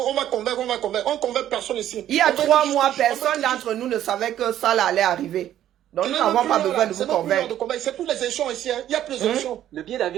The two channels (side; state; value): left; quieter; 11.8 dB